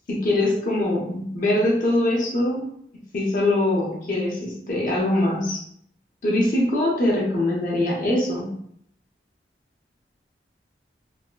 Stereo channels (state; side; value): normal; both; correlation 0.71